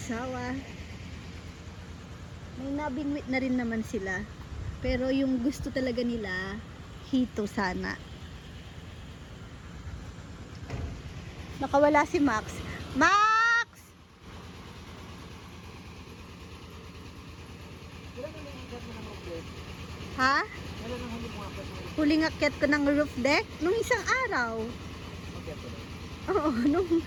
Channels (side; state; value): both; identical; correlation 1.00